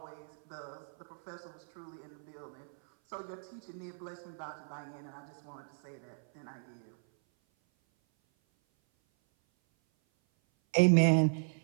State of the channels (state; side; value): silent; left; 54 dB below the other